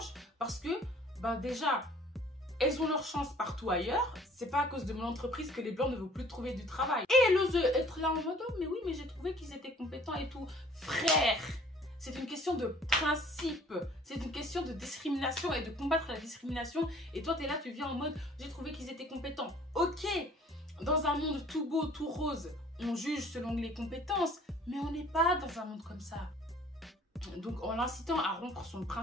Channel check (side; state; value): both; normal; correlation 0.53